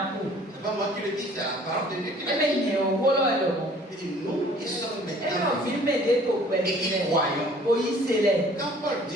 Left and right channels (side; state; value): both; normal; correlation 0.54